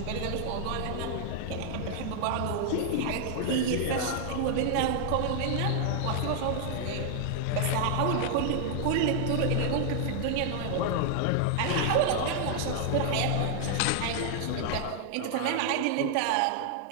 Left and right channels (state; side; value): different; both; correlation 0.00